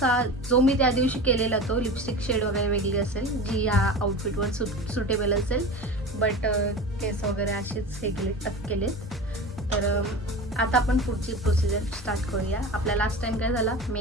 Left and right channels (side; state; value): both; normal; correlation 0.31